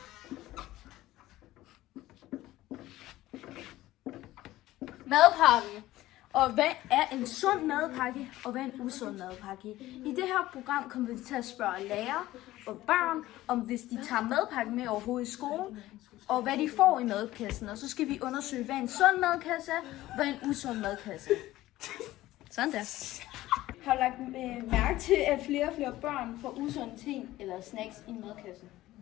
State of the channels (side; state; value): right; quieter; 16.1 dB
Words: madpakke. Og hvad er en sund madpakke, og hvad er en usund madpakke? I det her program kommer vi til at spørge lærere og børn, om hvis de tager madpakken med overhovedet i skolen, og hvad de får i madkassen. Og så skal vi undersøge, hvad en sund madkasse er, og hvad en usund madkasse er. Sådan der. Har du lagt mærke til, at flere og flere børn får usunde ting eller snacks i madkassen?